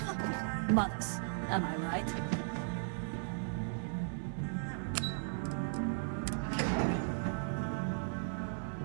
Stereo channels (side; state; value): left; silent; digital silence